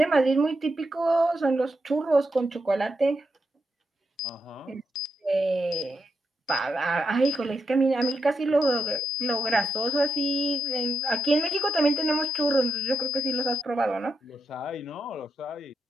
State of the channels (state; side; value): normal; both; correlation 0.83